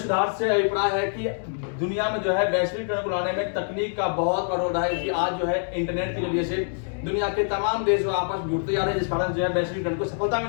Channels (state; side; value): silent; right; 62 dB below the other